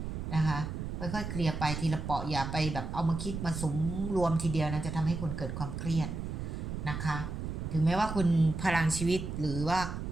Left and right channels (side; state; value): right; noise; rumble, 5 dB below the sound